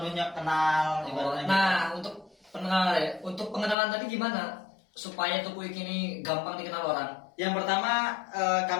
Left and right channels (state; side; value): drops out; right; at 3.8 s